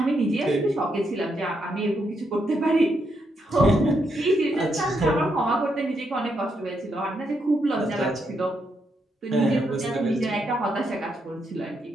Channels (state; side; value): normal; both; correlation 0.79